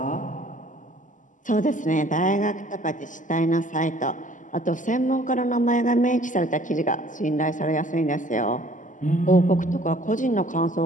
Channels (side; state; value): right; late; 0.37 ms